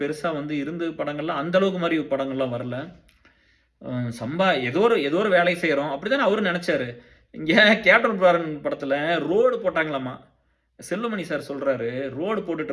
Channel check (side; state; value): both; identical; correlation 1.00